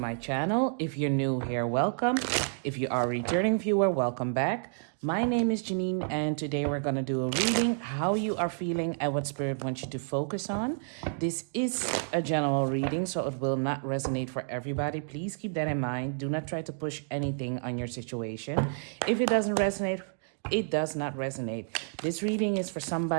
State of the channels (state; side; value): silent; left; digital silence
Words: channel. If you're new here, welcome. If you are a returning viewer, welcome back. My name is Janine, and today we're going to do a reading, how you are feeling and what spirit wants you to focus on. This is a general reading, so it will not resonate for everybody. Please keep that in mind. Do not try to push anything on your situation. If it doesn't resonate, it does not resonate. This reading is for